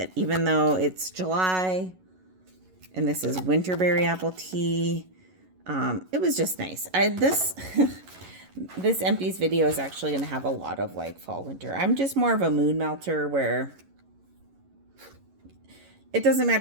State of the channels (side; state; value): left; late; 11 ms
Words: Even though it's July, and this is Winterberry Apple Tea, it was just nice. This empties video is actually going to have a lot of like fall, winter. I'm just more of a mood melter where it doesn't